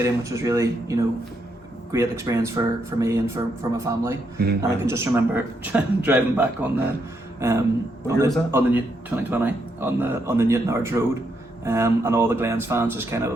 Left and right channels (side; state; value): both; normal; correlation 0.78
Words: which was really, you know, great experience for me and for my family. And I can just remember driving back on the 2020 on the Newton Ards Road. And all the Glens fans just kind of